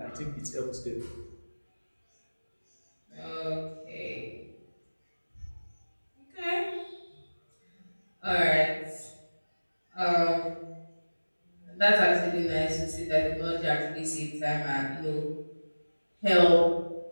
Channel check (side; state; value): both; inverted; correlation -1.00